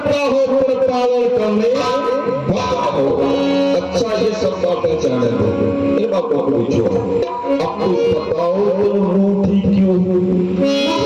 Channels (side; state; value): both; identical; correlation 1.00